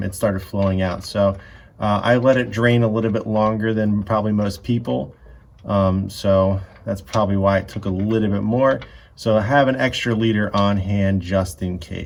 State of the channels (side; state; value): both; identical; correlation 1.00